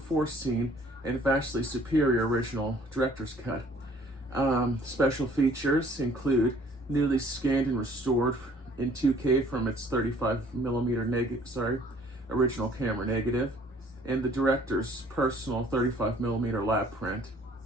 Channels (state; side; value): normal; both; correlation 0.57